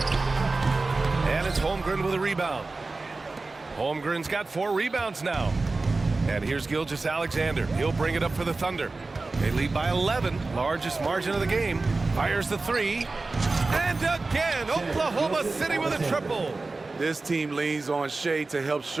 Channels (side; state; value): left; quieter; 3.5 dB